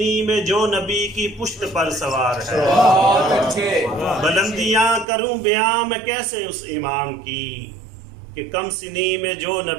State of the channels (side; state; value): left; drops out; at 5.1 s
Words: میں جو نبی کی پشت پر سوار ہے. بلندیاں کروں بیاں میں کیسے اس امام کی. کہ کم سنی میں جو